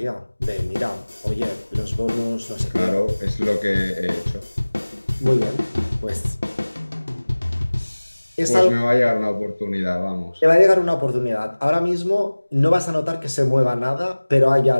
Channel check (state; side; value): inverted; both; correlation -1.00